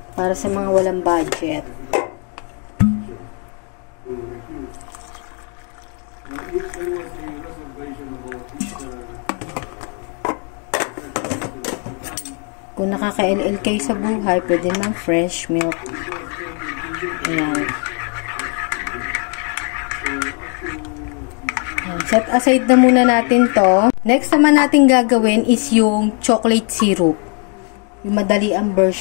Para sa mga walang budget. Kung nakaka-LL kayo sa buhay, pwede ng fresh milk. Ayan. Ayan. Set aside na muna natin to. Next naman natin gagawin is yung chocolate syrup. Yung madali ang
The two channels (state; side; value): quieter; right; 37.9 dB